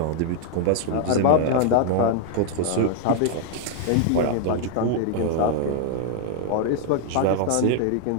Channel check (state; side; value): different; both; correlation 0.00